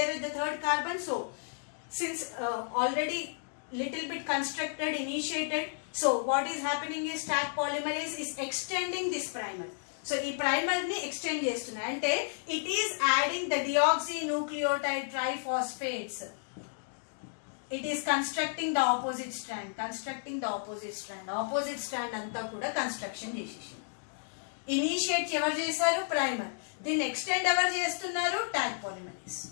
at the third carbon, so since already little bit constructed, initiated, so what is happening is Taq polymerase is extending this primer. So ఈ primer ని extend చేస్తున్నా అంటే it is adding the deoxynucleotide triphosphates. It is constructing the opposite strand, opposite strand అంతా కూడా construction చేసేసి. Initiate ఎవరు చేశారు? Primer. దీన్ని ఎక్స్టెండ్ ఎవరు చేస్తున్నారు? Taq polymerase.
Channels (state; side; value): silent; right; digital silence